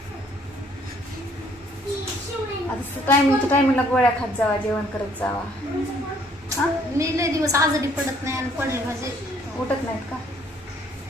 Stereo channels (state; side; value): normal; both; correlation 0.63